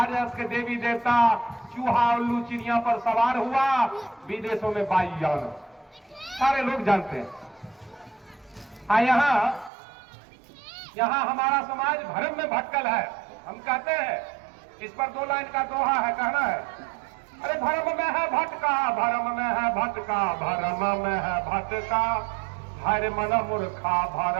के देवी देवता चूहा उल्लू चिड़िया पर सवार हुआ, विदेशों में वायुयान, सारे लोग जानते हैं। यहाँ हमारा समाज भ्रम में भटकल है। हम कहते हैं, इस पर 2 लाइन का दोहा है, कहना है, अरे भ्रम में है भटका, भ्रम में है भटका, भ्रम में है भटका, हर मन मूर्खा,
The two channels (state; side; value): drops out; left; at 9.7 s